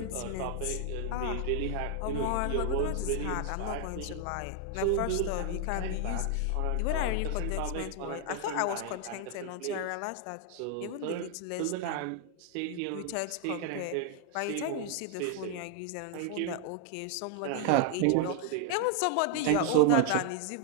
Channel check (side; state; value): both; different; correlation 0.00